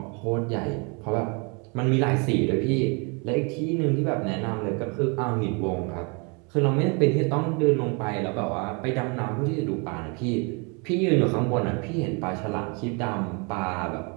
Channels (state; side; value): quieter; left; 32.9 dB